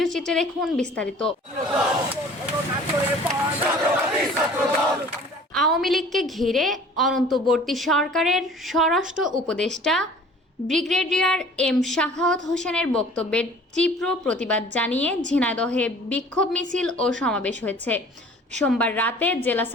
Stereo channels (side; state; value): both; normal; correlation 0.48